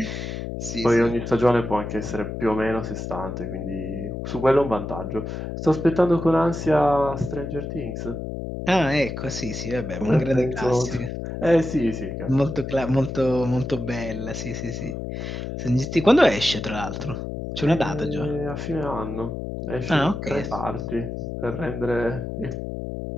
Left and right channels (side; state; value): left; noise; hum, 6 dB below the sound